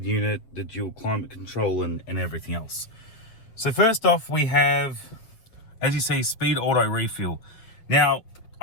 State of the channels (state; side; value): late; right; 7.8 ms